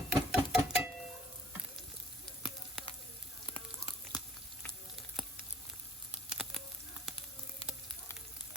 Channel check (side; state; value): both; normal; correlation 0.54